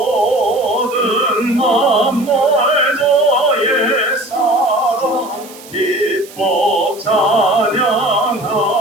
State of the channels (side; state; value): right; noise; hiss, 19 dB below the sound